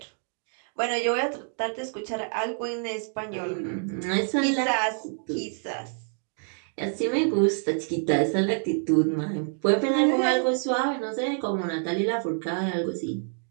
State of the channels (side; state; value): left; silent; 60 dB below the other